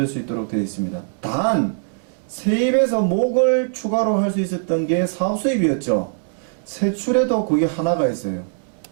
수 있도록 되어 있습니다. 단 세입에서 목을 추가로 할 수 있었던 게 사업수입이었죠. 세출에도 그게 하나가 있어요.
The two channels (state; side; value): silent; left; digital silence